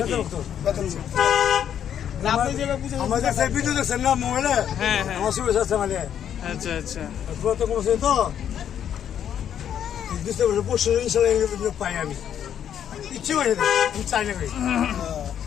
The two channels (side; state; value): right; quieter; 9.4 dB